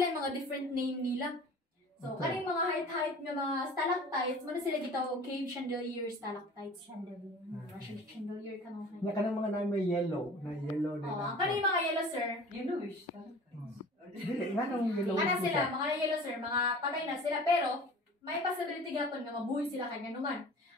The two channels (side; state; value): both; normal; correlation 0.43